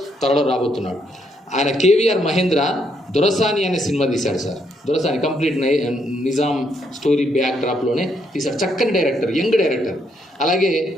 త్వరలో రాబోతున్నాడు. ఆయన కేవీఆర్ మహేంద్ర దొరసాని అనే సినిమా తీశాడు సార్. దొరసాని కంప్లీట్ నిజాం స్టోరీ బ్యాక్ డ్రాప్లోనే తీశాడు, చక్కని డైరెక్టర్, యంగ్ డైరెక్టర్. అలాగే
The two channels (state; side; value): normal; both; correlation 0.74